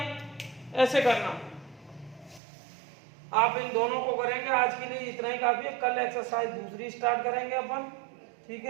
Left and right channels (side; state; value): left; drops out; at 2.4 s